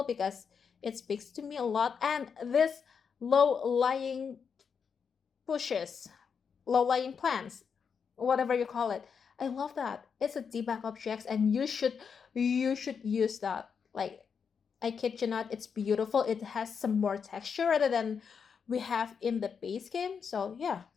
because it speaks to me a lot. And this low lying bushes, low lying plants, whatever you call it, I love that. It's a debug objects, and you should use that. Like, I kid you not, it's beautiful. It has some more texture rather than we have in the base game. So yeah,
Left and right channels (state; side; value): quieter; right; 6.4 dB